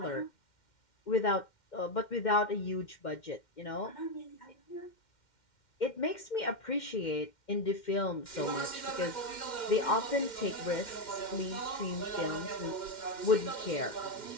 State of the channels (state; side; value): late; right; 2.1 ms